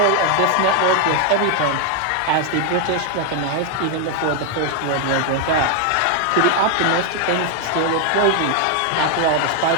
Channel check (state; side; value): different; both; correlation 0.00